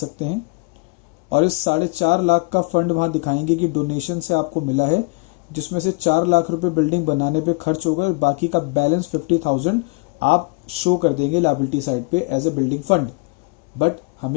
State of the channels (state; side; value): quieter; right; 28.5 dB